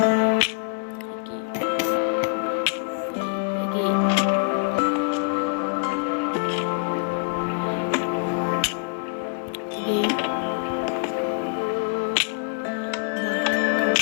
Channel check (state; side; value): quieter; right; 37.0 dB